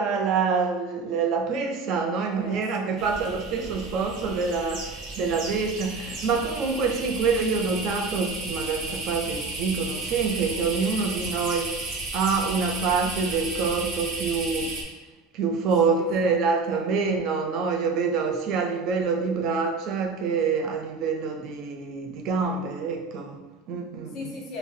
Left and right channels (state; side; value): quieter; left; 4.4 dB